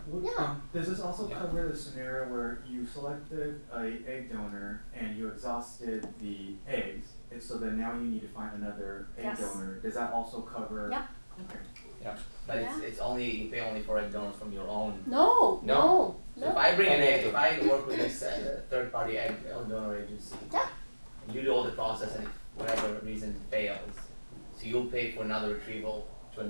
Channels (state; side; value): inverted; both; correlation -1.00